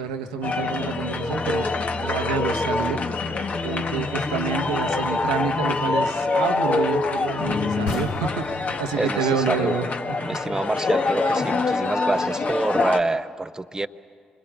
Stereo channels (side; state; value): both; normal; correlation 0.70